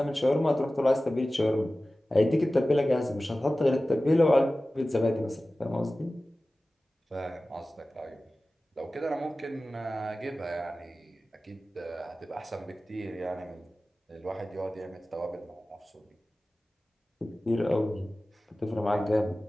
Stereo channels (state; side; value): normal; both; correlation 0.96